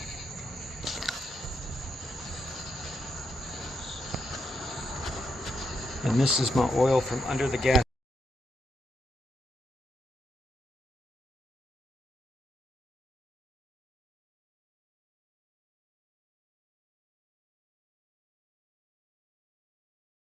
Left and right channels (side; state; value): both; normal; correlation 0.81